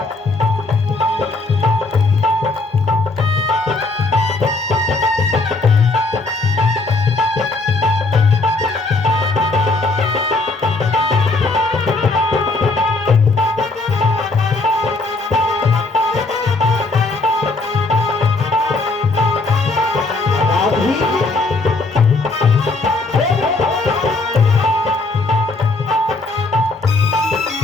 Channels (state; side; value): quieter; right; 3.4 dB